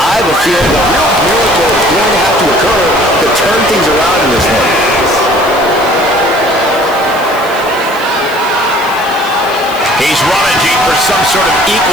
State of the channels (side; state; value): left; noise; hiss, 18 dB below the sound